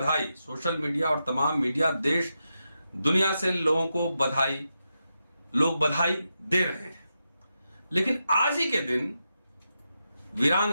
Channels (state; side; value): inverted; both; correlation -0.87